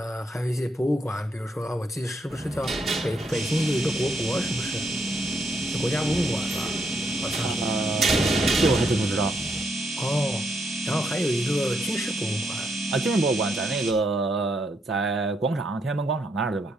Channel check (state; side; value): normal; both; correlation 0.77